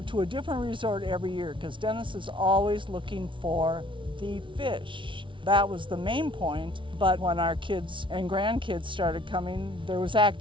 to a different resort every year because Dennis is always looking for the fish. That was the main point, but when our kids and grandkids started coming, there was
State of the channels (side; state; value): left; late; 0.24 ms